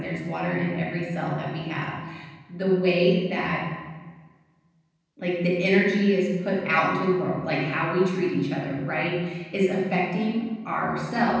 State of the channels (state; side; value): identical; both; correlation 1.00